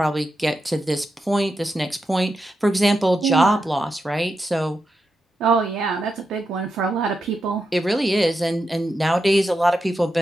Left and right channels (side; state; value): both; normal; correlation 0.87